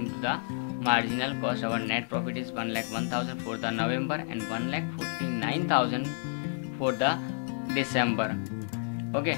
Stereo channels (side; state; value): right; silent; digital silence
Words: to the marginal cost, our net profit is 1,01,000 for the November and 1,49,000 for the December. Okay,